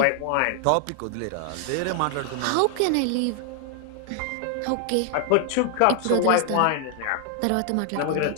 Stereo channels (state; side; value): different; both; correlation 0.00